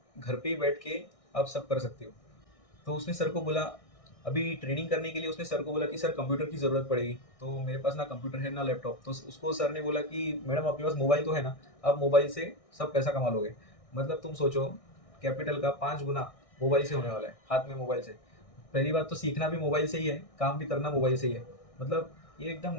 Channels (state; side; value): late; right; 1.6 ms